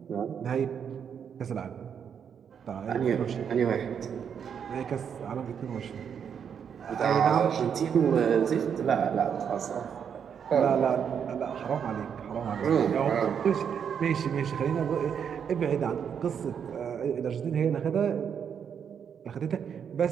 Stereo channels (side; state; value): left; quieter; 7.6 dB